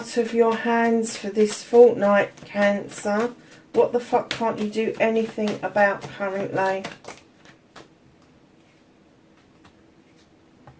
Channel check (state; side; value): identical; both; correlation 1.00